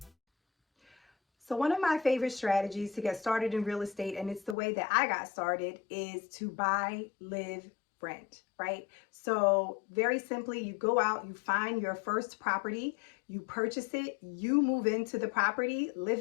So one of my favorite strategies to get started in real estate, and it's the way that I got started, is to buy, live, rent, right? So very simply, you go out, you find your first property, you purchase it, you move into the property, live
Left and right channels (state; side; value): drops out; right; at 4.5 s